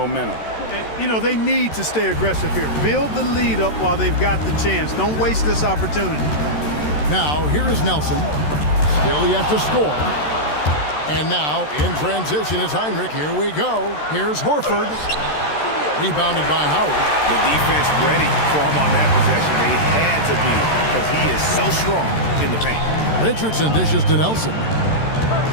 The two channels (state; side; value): late; right; 13 ms